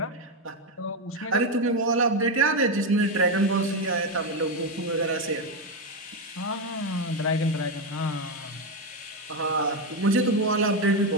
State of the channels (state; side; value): normal; both; correlation 0.08